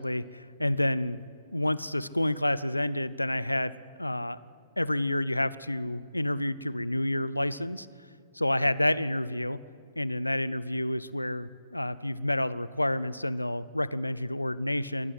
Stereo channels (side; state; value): both; inverted; correlation -0.96